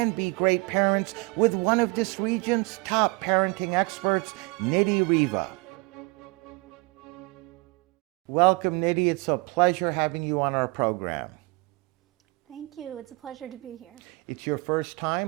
be great parents with one of this region's top parenting experts, Nidhi Reva. Welcome, Nidhi. It's a pleasure having you on our program. Thank you. It's a pleasure to be here. It's your first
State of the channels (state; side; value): quieter; left; 26.8 dB